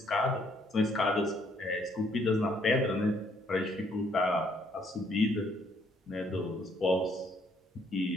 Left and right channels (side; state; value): both; normal; correlation 0.67